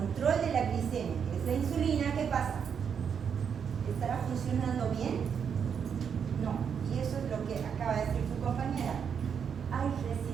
de la glicemia, que es la insulina, ¿qué pasa? ¿Estará funcionando bien? No. Y eso es lo que acaba de decir su compañera. Hay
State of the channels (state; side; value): quieter; left; 7.2 dB